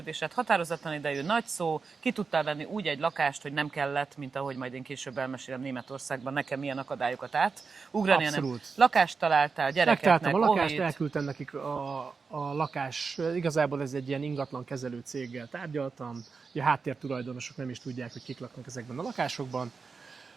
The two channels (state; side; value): quieter; left; 4.9 dB